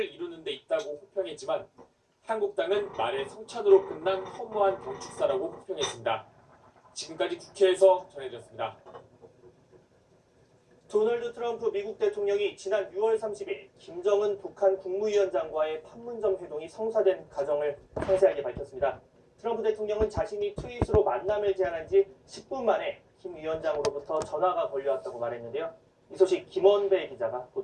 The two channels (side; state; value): both; identical; correlation 1.00